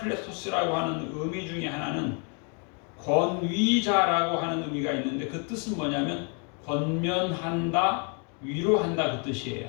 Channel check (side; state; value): right; quieter; 38.2 dB